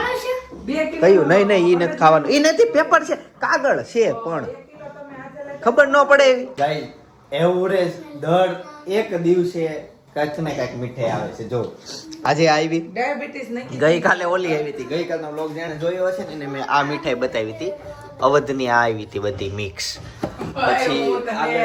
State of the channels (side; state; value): both; identical; correlation 1.00